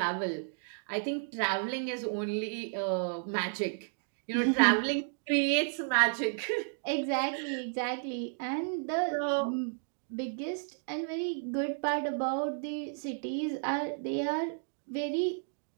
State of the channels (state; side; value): silent; left; digital silence